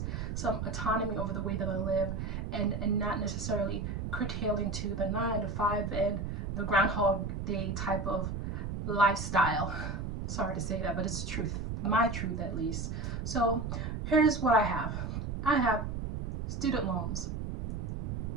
some autonomy over the way that I live, and not necessarily curtailing to the 9 to 5 and the Groundhog Day type of lifestyle. Sorry to say that, but it's the truth, my truth at least. So here's what I have. I have student loans,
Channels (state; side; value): noise; right; rumble, 4 dB below the sound